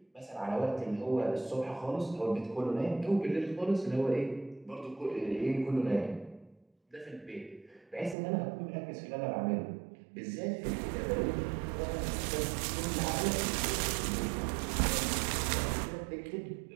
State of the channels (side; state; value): left; drops out; at 8.2 s